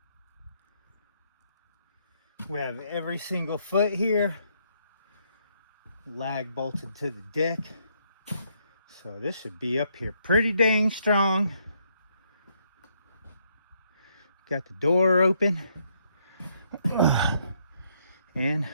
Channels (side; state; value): both; inverted; correlation -0.73